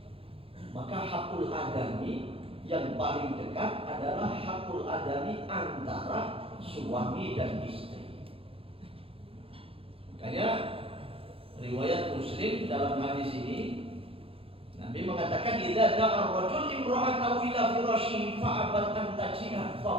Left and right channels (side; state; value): left; late; 0.27 ms